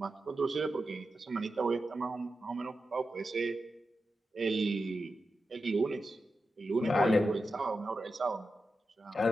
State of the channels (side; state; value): both; normal; correlation 0.90